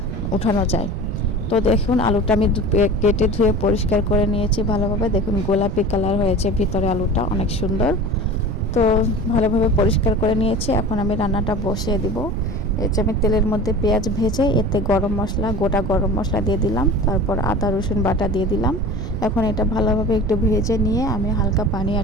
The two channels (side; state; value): right; noise; rumble, 5 dB below the sound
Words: উঠানো যায়। তো দেখুন আলুটা আমি কেটে ধুয়ে পরিষ্কার করে নিয়েছি ভালোভাবে। দেখুন গোলাপি কালার হয়েছে ভিতরে, আলুটা অনেক সুন্দর। তো ভালোভাবে পরিষ্কার করে নিয়েছি। এখন আমি রান্নাটা বসিয়ে দিব। এই যে আমি তেলের মধ্যে পেঁয়াজ ভেজে এতে গরম মশলা, গোটা গরম মশলা দিয়ে দিলাম, তারপর আদা রসুন বাটা দিয়ে দিলাম। এখন এটা ভালোভাবে একটু ভেজে নিয়ে আমি হালকা পানি